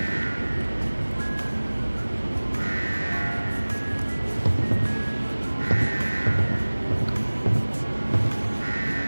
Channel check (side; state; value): both; inverted; correlation -1.00